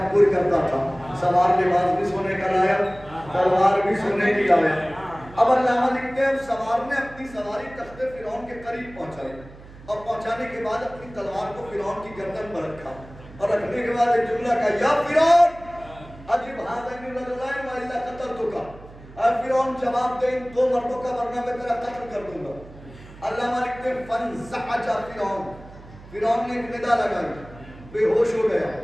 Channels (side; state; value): right; noise; hum, 19 dB below the sound